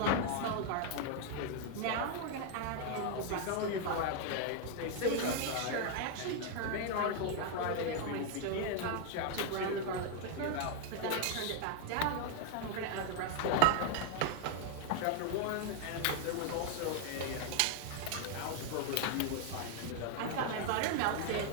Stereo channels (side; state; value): both; different; correlation 0.00